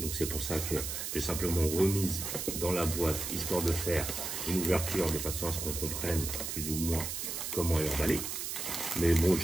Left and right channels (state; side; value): noise; right; hiss, 4 dB below the sound